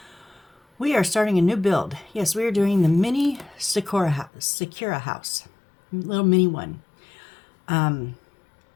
we are starting a new build. Yes, we are doing the mini Sakura house. Little mini one.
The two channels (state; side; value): drops out; right; at 4.3 s